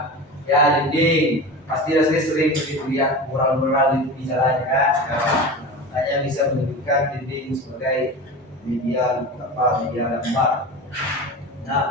Ya, dinding. Pasti Dasri sering lihat mural-mural di jalan kan. Makanya bisa menunjukkan dinding sebagai media gambar.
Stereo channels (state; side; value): normal; both; correlation 0.29